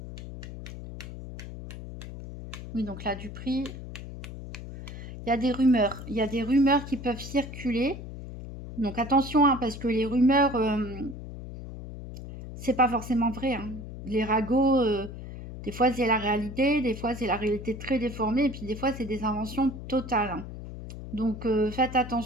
Oui, donc là, du prix. Il y a des rumeurs. Il y a des rumeurs qui peuvent circuler. Donc, attention, hein, parce que les rumeurs, c'est pas forcément vrai, hein. Les ragots, des fois, c'est la réalité. Des fois, c'est la réalité très déformée. Et puis, des fois, c'est des inventions totales, hein. Donc, faites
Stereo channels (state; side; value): noise; left; hum, 11 dB below the sound